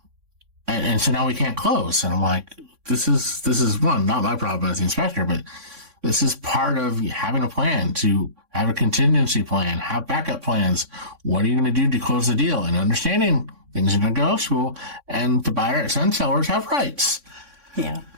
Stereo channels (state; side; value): late; left; 3.6 ms